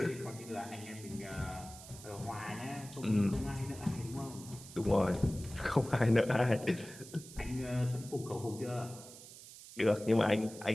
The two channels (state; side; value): noise; right; hiss, 16 dB below the sound